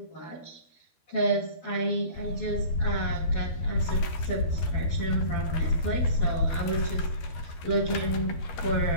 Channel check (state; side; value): late; right; 12 ms